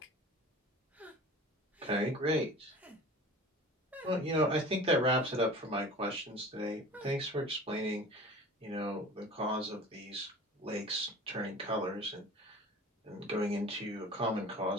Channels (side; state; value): both; normal; correlation 0.40